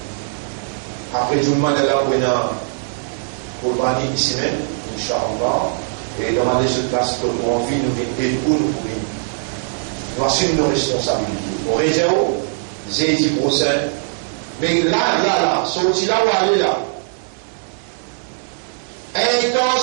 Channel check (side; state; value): left; silent; digital silence